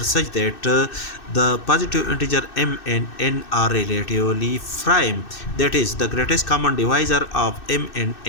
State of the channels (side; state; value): right; late; 2.6 ms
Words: such that the positive integer m and n are relatively prime. That is, the greatest common divisor of m and